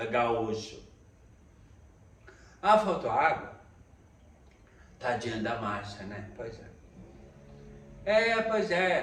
gaúcho. Faltou água? Tadinha da Márcia, né? Pois é. Pois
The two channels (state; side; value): identical; both; correlation 1.00